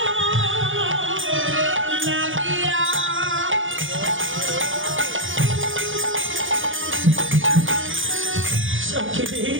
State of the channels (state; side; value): late; left; 0.57 ms